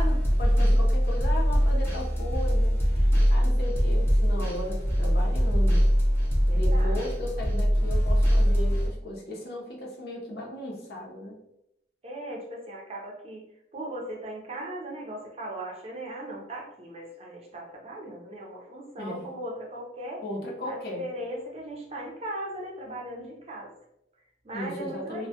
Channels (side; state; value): both; normal; correlation 0.93